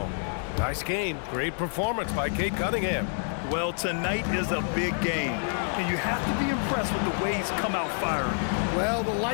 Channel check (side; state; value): right; silent; 59 dB below the other